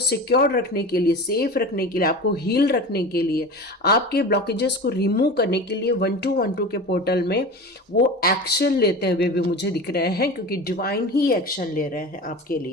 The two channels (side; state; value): both; normal; correlation 0.32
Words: रखने के लिए, सेफ रखने के लिए, आपको हील रखने के लिए, आपके ब्लॉकेजेस को रिमूव करने के लिए 1212 के पोर्टल में वो एक्शन लेते हुए भी मुझे दिख रहे हैं, क्योंकि डिवाइन ही एक्शन ले रहे हैं आपके